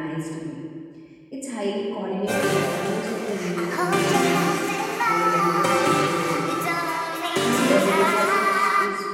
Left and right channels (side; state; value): both; identical; correlation 1.00